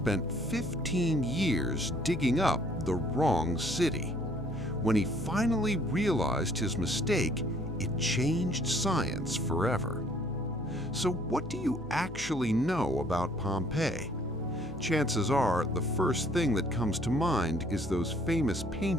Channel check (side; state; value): both; normal; correlation 0.61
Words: 15 years digging up the wrong city. When he finally realized his mistake, it changed science forever. So what do you actually know about Pompeii? Chances are the first thing that comes to mind is those famous